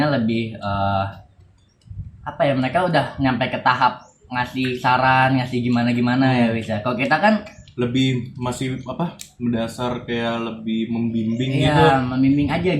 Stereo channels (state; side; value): identical; both; correlation 1.00